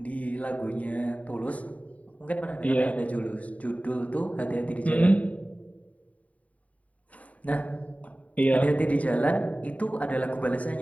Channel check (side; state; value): right; late; 0.068 ms